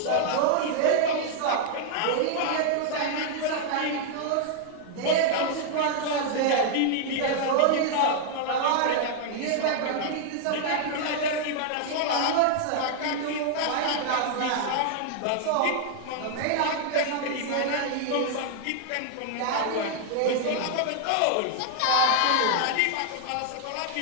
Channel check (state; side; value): different; both; correlation 0.00